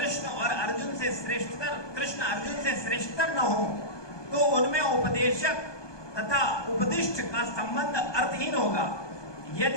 अर्जुन से श्रेष्ठतर न हो तो उनमें उपदेशक तथा उपदिष्ट का संबंध अर्थहीन होगा।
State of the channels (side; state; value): right; late; 1.2 ms